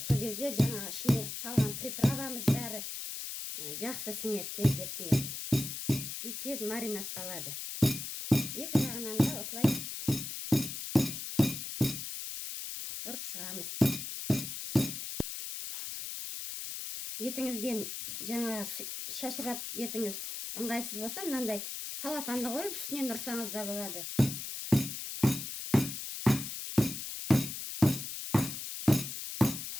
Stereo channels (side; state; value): left; noise; hiss, 6 dB below the sound